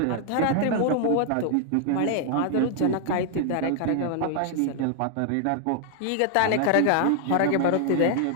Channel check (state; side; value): different; both; correlation 0.00